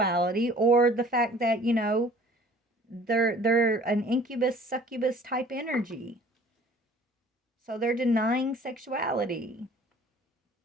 or the fact that, you know, they're an incubus succubus type energy. So they're denying sexuality.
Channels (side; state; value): both; normal; correlation 0.51